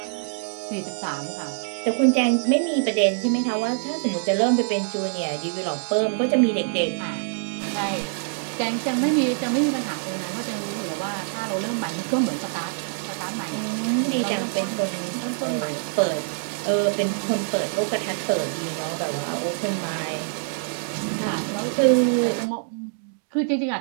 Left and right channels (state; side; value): silent; left; digital silence